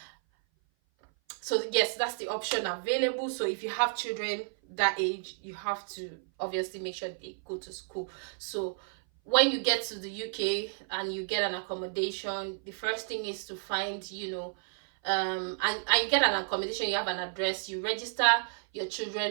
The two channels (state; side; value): silent; left; 56 dB below the other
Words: yes, that's the option available. So if you have children that age, you have to obviously make sure they go to school. So when you get to the UK and you get an accommodation, the first thing is to find, and you get an accommodation, you have an address, you register your